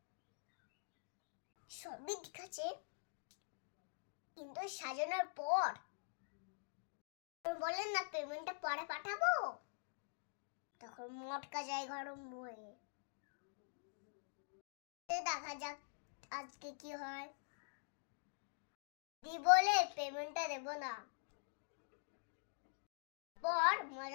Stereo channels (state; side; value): silent; right; digital silence